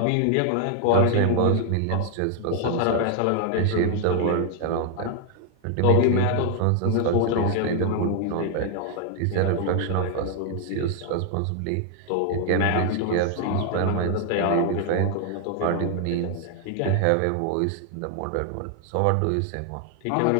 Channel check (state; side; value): different; both; correlation 0.00